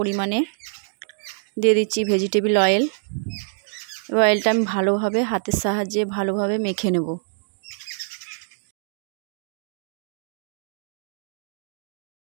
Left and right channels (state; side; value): silent; left; digital silence